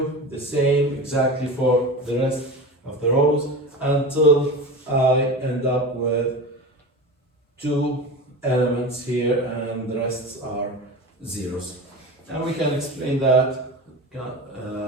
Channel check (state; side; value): normal; both; correlation 0.29